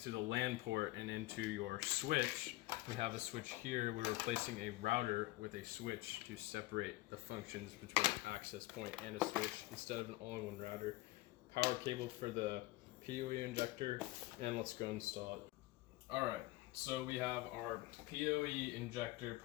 the LAN port and into your switch. We have a switch here. We're replacing a router with a switch to separate the functions between an access point and a switch instead of an all-in-one router. Power cable for the PoE injector, and let's go install it. All right, so we have our PoE injector,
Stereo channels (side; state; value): right; quieter; 19.1 dB